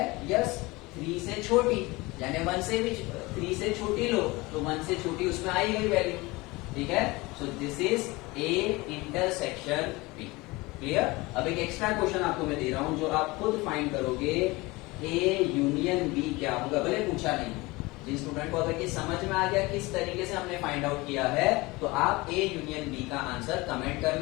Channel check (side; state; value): right; quieter; 22.7 dB